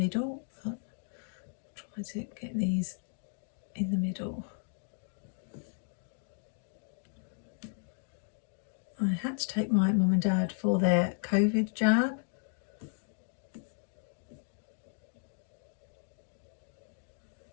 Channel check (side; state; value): right; silent; 55 dB below the other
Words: But I'll try to get these in the middle. I had to take my mum and dad for their COVID jab.